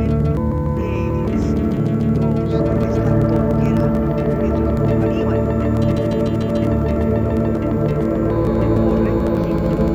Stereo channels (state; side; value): identical; both; correlation 1.00